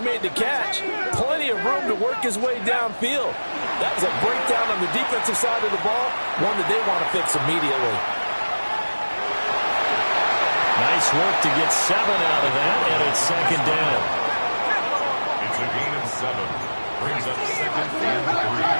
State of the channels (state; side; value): inverted; both; correlation -1.00